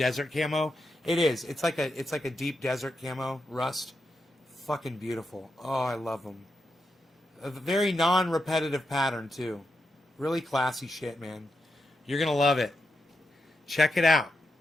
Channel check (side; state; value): both; normal; correlation 0.86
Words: camo. It is. It's like a deep desert camo, rust. Fucking beautiful. Oh, I love them. A very non-repetitive pattern too. Really classy shit, man. You're gonna love it. Check it out.